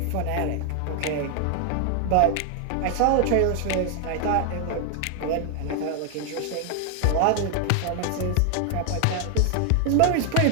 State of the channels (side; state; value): both; different; correlation 0.00